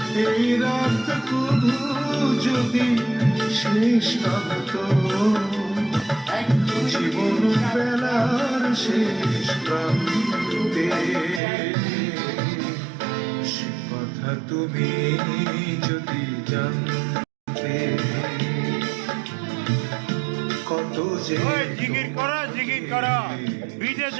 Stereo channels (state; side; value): drops out; left; at 11.4 s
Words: এই রাত কবু যদি শেষ না হতো, জীবন বেলার শেষ প্রান্তে। সে কথা তুমি যদি জানতে। কত যে জিকির করো বিটে